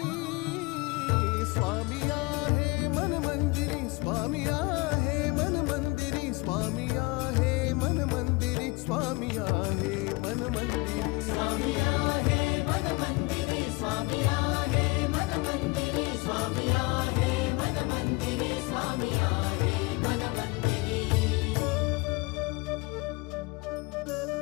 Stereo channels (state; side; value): quieter; right; 25.5 dB